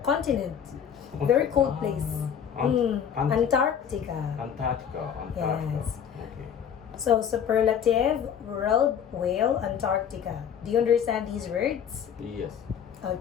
Continent. Very cold place. Antarctica. Antarctica. Antarctica. Yes. Okay. So, superlative, world, whale, Antarctica. Do you understand these words? Yes.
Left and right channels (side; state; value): right; quieter; 8.3 dB